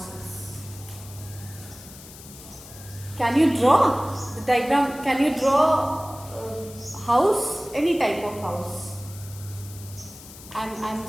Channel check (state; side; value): noise; left; hiss, 17 dB below the sound